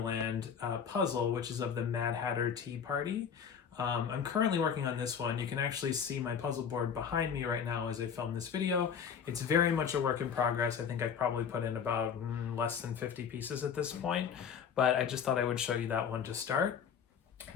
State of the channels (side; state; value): right; quieter; 7.3 dB